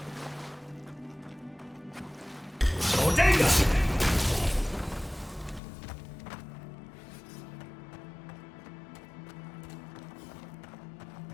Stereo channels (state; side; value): drops out; right; at 5.6 s